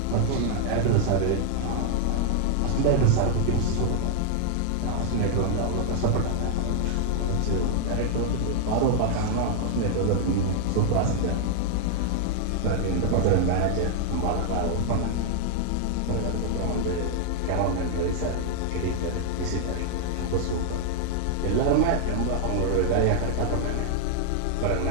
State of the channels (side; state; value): both; different; correlation 0.00